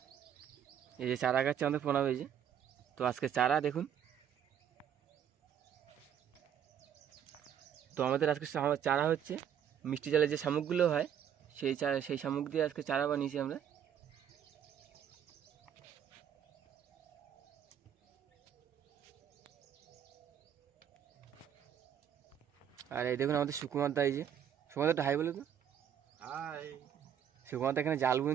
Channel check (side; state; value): left; quieter; 9.1 dB